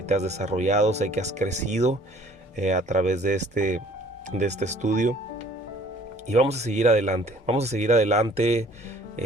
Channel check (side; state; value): both; normal; correlation 0.55